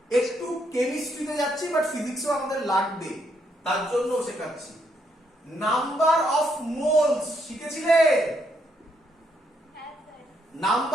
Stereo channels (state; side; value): normal; both; correlation 0.75